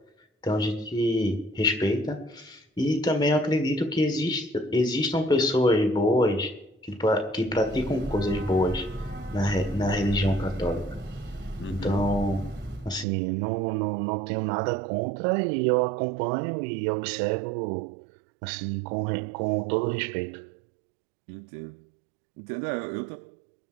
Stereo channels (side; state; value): left; drops out; at 13.1 s